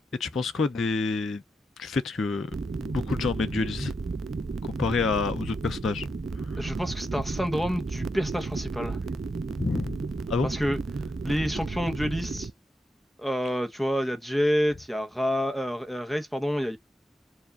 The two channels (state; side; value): normal; both; correlation 0.84